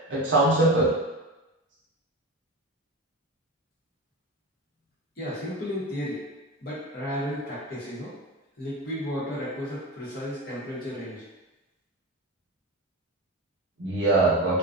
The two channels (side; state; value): both; normal; correlation 0.25